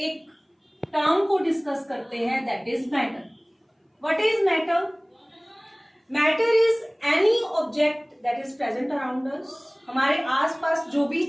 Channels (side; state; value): both; identical; correlation 1.00